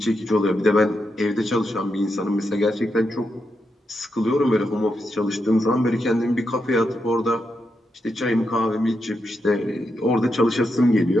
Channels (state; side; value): normal; both; correlation 0.84